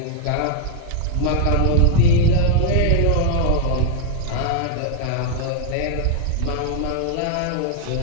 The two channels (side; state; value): both; different; correlation 0.01